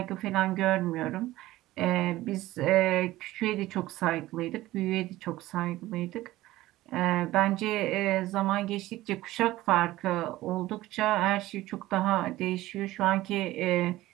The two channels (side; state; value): left; quieter; 16.7 dB